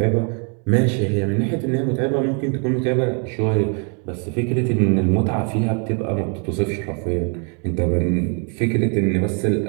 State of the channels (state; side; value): quieter; left; 38.9 dB